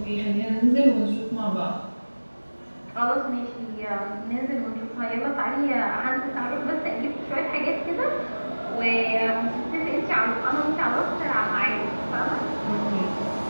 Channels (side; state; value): both; inverted; correlation -1.00